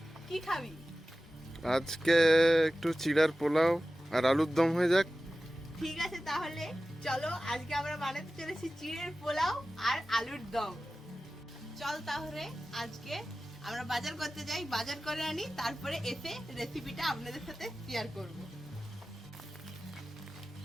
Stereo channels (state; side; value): normal; both; correlation 0.95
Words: কি খাবি? আজকে একটু চিড়ার পোলাও আর আলুর দম হয়ে যাক। ঠিক আছে, তাহলে চলো আজকে আমরা বানাতে চলেছি চিড়ের পোলাও আর আলুর দম। চল তাহলে আজকে আমরা বাজার করতে যাই, বাজার করে আনি, তারপরে এসে রেসিপিটা আপনাদের সাথে শেয়ার করব।